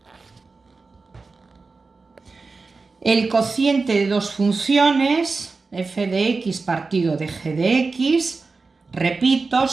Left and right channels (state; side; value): quieter; left; 4.1 dB